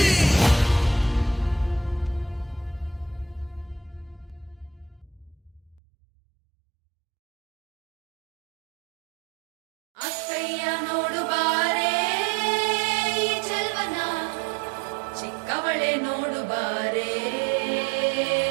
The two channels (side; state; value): left; drops out; at 5.8 s